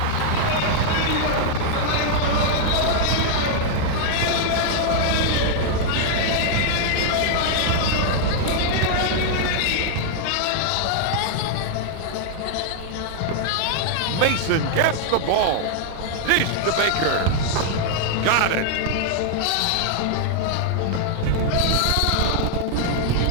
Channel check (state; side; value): different; both; correlation 0.00